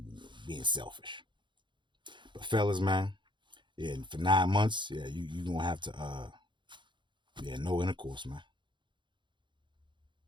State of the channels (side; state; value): left; late; 0.23 ms